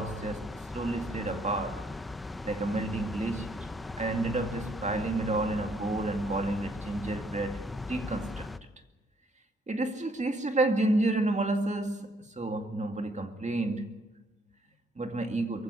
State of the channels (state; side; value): normal; both; correlation 0.67